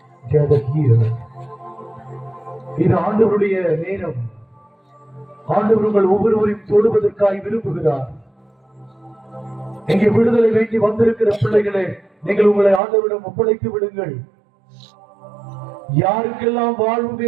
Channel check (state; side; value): drops out; left; at 12.8 s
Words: gathered here. இது ஆண்டவருடைய நேரம். ஆண்டவர்கள் ஒவ்வொருவரையும் தொடுவதற்காய் விரும்புகிறார். இங்கே விடுதலை வேண்டி வந்திருக்கிற பிள்ளைகளே, நீங்கள் உங்களை ஆண்டவரிடம் ஒப்படைத்து விடுங்கள். யாருக்கெல்லாம் வாழ்வு